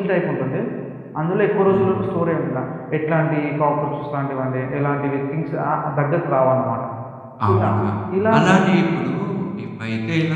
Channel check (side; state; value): both; identical; correlation 1.00